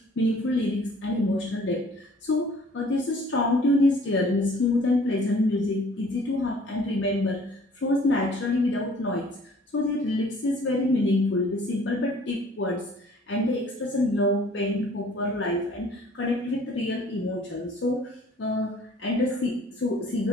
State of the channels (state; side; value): normal; both; correlation 0.54